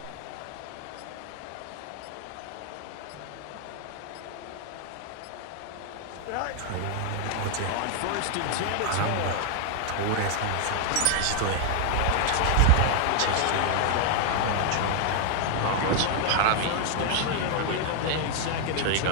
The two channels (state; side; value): different; both; correlation 0.00